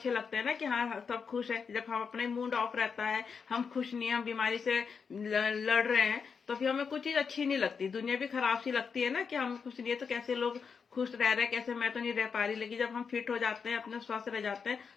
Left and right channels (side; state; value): right; quieter; 5.9 dB